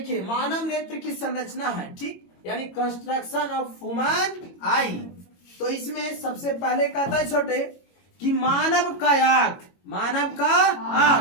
मानव नेत्र की संरचना है, ठीक, यानी कंस्ट्रक्शन ऑफ ह्यूमन आई। तो इसमें सबसे पहले कहता है छोटे कि मानव का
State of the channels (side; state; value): right; late; 22 ms